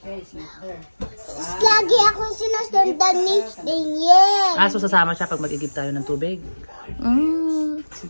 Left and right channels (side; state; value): both; inverted; correlation -1.00